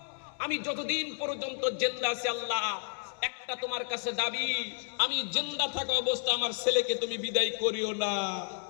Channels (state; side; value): silent; right; digital silence